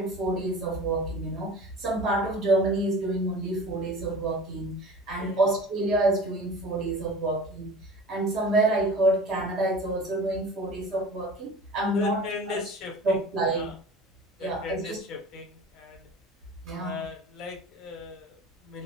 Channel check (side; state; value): both; normal; correlation 0.39